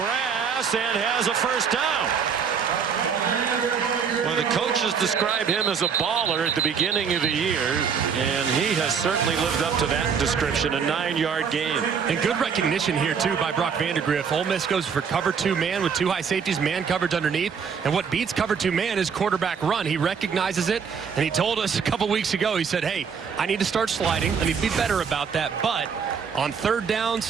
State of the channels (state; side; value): quieter; left; 6.5 dB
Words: and has a first down. Well, the coaches describe him as a baller at the beginning of the year, and he has certainly lived up to that description. A 9-yard gain. And good recognition here, too, by Brock Vandegrift. Ole Miss goes for cover 2 man with 2 high safeties, man coverage underneath. And what beats cover 2 man is quarterback run. He recognizes it, and he told us a couple weeks ago, he said, hey, I need to start sliding. I need to be better about that. But on third